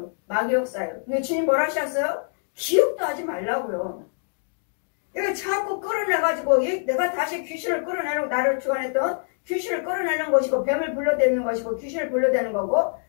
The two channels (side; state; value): right; silent; digital silence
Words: 마귀 역사예요. 근데 주님 뭐라 하셨어요? 기억도 하지 말라고요. 이거 자꾸 끌어내가지고 내가 다시 귀신을 끌어내는, 나를 주관했던 귀신을 끌어내는 것이고, 뱀을 불러대는 것이고, 귀신을 불러대는 거고,